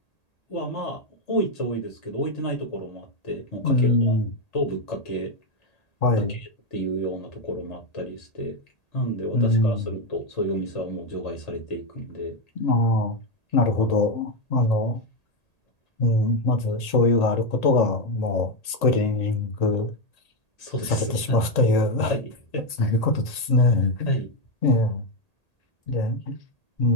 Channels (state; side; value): late; right; 1.8 ms